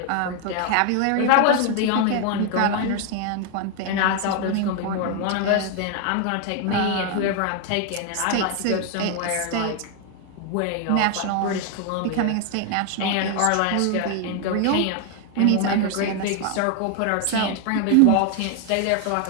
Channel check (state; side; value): different; both; correlation 0.00